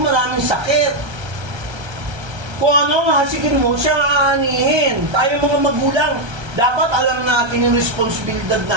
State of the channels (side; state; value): left; late; 1.3 ms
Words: sakit. Kung ano ang hasikin mo, siya ang aanihin. Tayo mga magulang, dapat alam natin yung responsibilidad